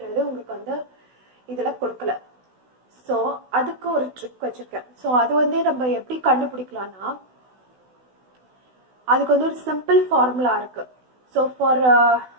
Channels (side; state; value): left; late; 16 ms